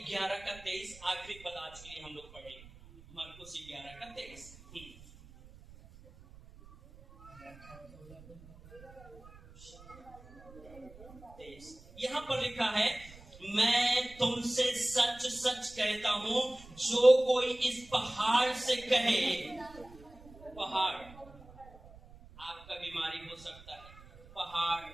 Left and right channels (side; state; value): right; noise; rumble, 21 dB below the sound